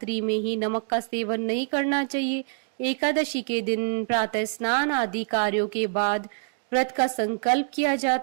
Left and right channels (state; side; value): silent; left; digital silence